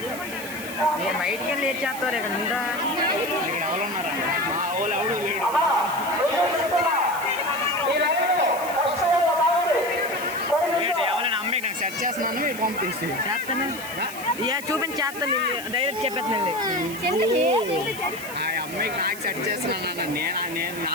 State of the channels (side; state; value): right; noise; hiss, 13 dB below the sound